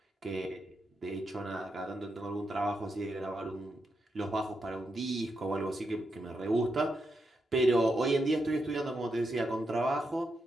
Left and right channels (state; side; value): normal; both; correlation 0.84